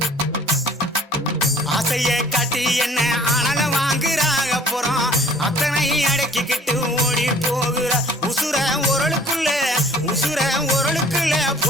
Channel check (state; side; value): normal; both; correlation 0.53